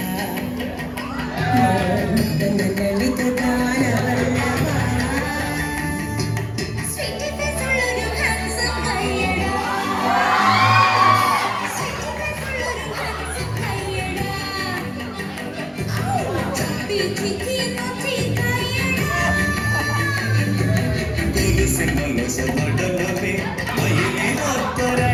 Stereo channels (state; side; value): identical; both; correlation 1.00